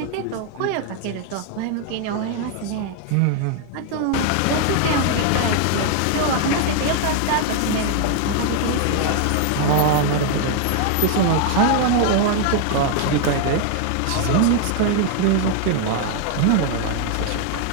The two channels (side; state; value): both; different; correlation 0.00